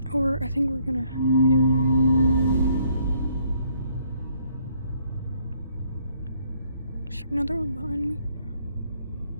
Or I think we're gonna be doing that. Is there another one behind me?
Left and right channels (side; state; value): both; inverted; correlation -0.68